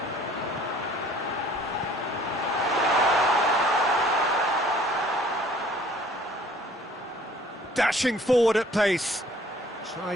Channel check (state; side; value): normal; both; correlation 0.55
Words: Dashing forward at pace.